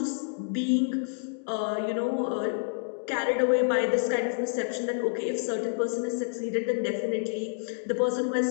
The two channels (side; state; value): right; silent; digital silence